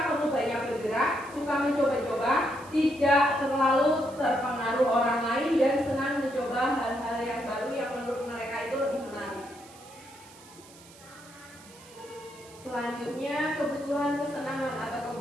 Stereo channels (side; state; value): right; noise; hiss, 22 dB below the sound